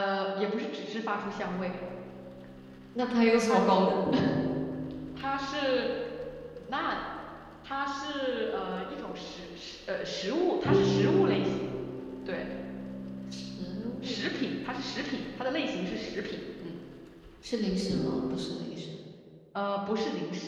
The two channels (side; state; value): both; identical; correlation 1.00